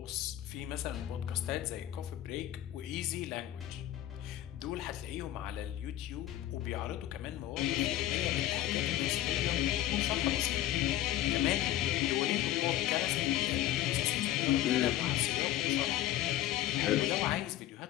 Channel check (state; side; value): quieter; right; 13.4 dB